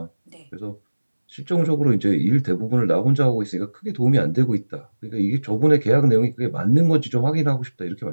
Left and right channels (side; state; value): both; inverted; correlation -1.00